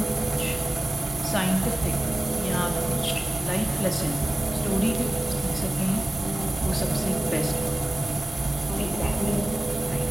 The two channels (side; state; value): both; normal; correlation 0.97